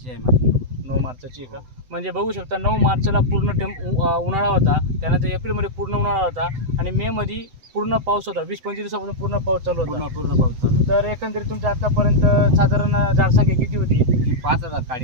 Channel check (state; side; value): late; left; 7.9 ms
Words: आहे माझी. 9 मार्चची का? म्हणजे बघू शकता 9 मार्चला पूर्ण उन्हाळा होता, त्यानंतर एप्रिलमध्ये पूर्ण उन्हाळा होता आणि मेमध्ये पूर्ण पाऊस होता. 20-25 दिवसापासून पूर्ण पाऊस चालू होता. पूर्ण पाऊस चालू. तर एकंदरीत तुमच्या आतापर्यंत साधारण झाडसंख्या किती होती? ही 5000